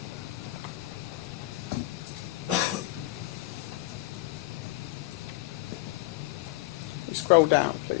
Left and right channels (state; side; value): quieter; right; 19.0 dB